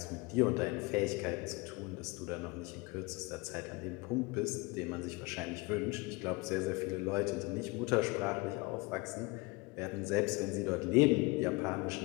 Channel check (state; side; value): quieter; right; 25.8 dB